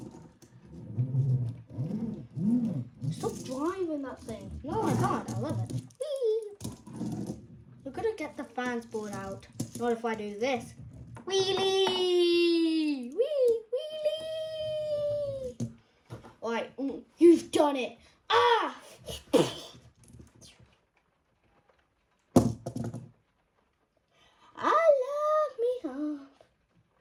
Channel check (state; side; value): identical; both; correlation 1.00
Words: Stop driving that thing. No, I can't. I love it. Whee! You're going to get the fans board out. Not if I do this. Wheelie! Wheelie! Alright, you've done it. Ah!